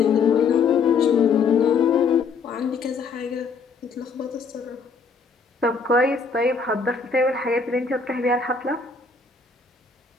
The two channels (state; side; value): quieter; right; 5.0 dB